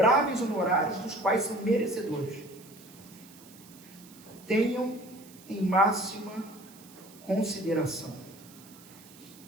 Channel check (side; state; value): right; noise; hiss, 22 dB below the sound